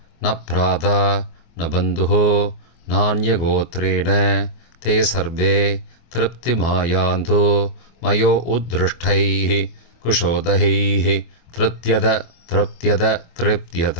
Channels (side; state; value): right; late; 24 ms